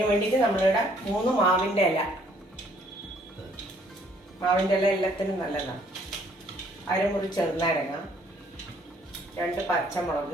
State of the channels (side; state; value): both; normal; correlation 0.63